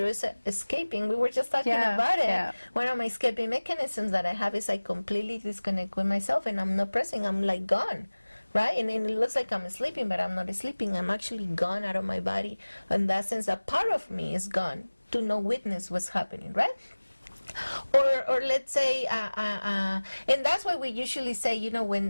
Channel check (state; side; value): inverted; both; correlation -1.00